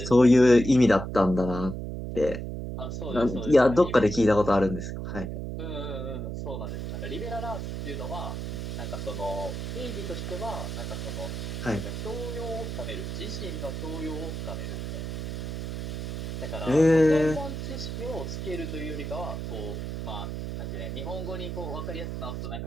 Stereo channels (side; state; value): right; noise; hum, 5 dB below the sound